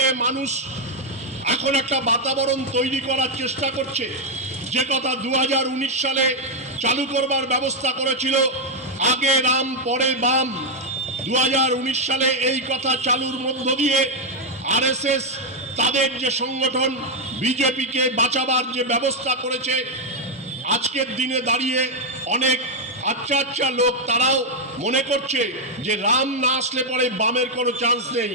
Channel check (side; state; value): both; normal; correlation 0.01